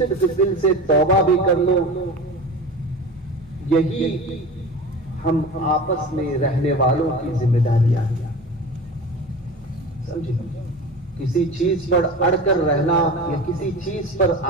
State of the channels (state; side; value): normal; both; correlation 0.33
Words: दिल से तौबा भी कर लो। यही हम आपस में रहने वालों की जिम्मेदारियां हैं, समझे। किसी चीज पर अड़कर रहना या किसी चीज पर